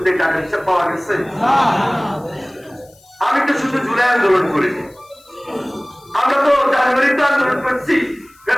টাকা হিসাব পাওয়া গেছে? আমি তো শুধু জুলাই আন্দোলন করিনি, আমরা তো জানুয়ারিতে আন্দোলন করছি,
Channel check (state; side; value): noise; left; hiss, 29 dB below the sound